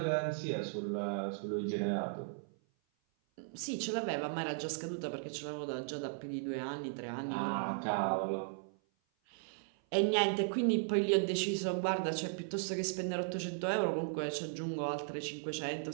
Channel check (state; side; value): silent; left; 53 dB below the other